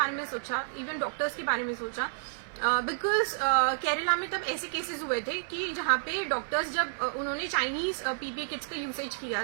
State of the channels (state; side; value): silent; left; digital silence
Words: में सोचा, इवन डॉक्टर्स के बारे में सोचा. बिकॉज केरला में तब ऐसे केसेस हुए थे कि जहाँ पे डॉक्टर्स जब उन्होंने चाइनीज पीपी किट्स का यूसेज किया